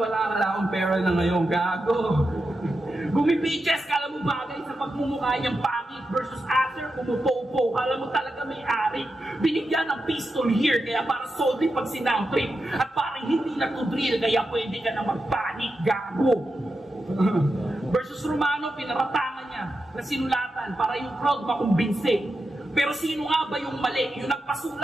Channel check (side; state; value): both; normal; correlation 0.89